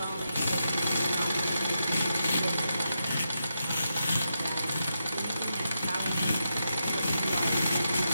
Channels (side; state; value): both; inverted; correlation -0.85